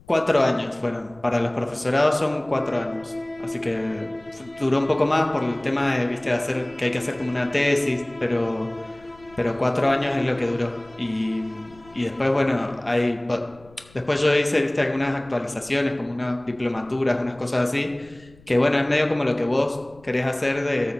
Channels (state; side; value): noise; left; rumble, 26 dB below the sound